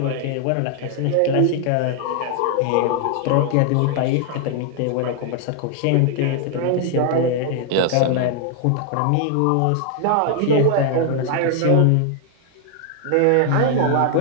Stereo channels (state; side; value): different; both; correlation 0.00